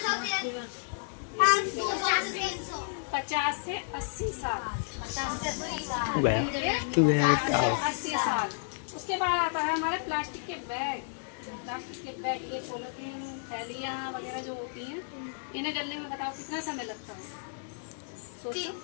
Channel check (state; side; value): silent; right; digital silence